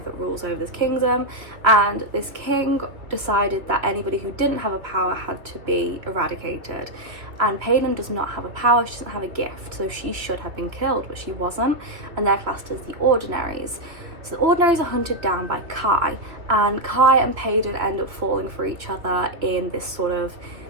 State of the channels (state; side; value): late; left; 2.7 ms